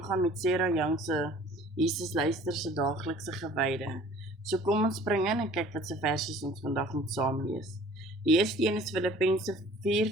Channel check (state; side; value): normal; both; correlation 0.49